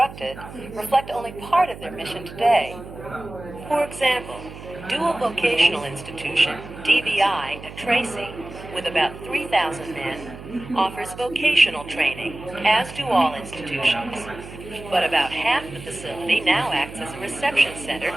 reflect only part of their mission today. For example, Dual Vocational Institution, DVI, at Tracy, with about 3,000 men, offers vocational training, as do all institutions. But about half the facility now acts as a reception center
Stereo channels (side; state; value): right; noise; hum, 14 dB below the sound